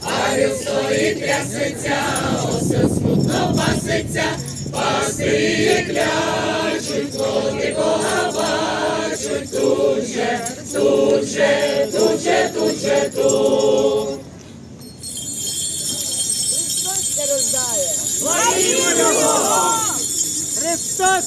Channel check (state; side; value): identical; both; correlation 1.00